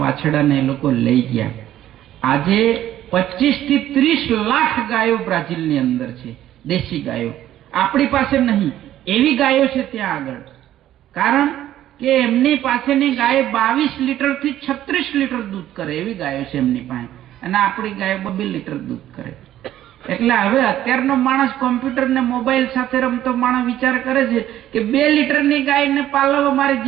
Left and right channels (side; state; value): left; quieter; 12.6 dB